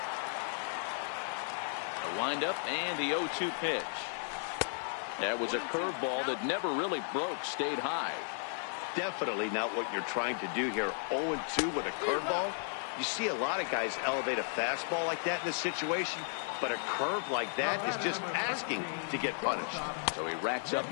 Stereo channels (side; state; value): right; silent; 55 dB below the other